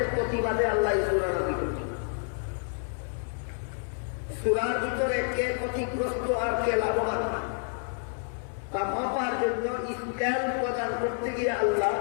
প্রতিবাদে আল্লাহ সূরা নাযিল করেছেন। সূরার ভিতরে কে ক্ষতিগ্রস্ত আর কে লাভবান তা মাপার জন্য স্কেল প্রদান করতে গিয়ে আল্লাহ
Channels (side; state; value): right; silent; 59 dB below the other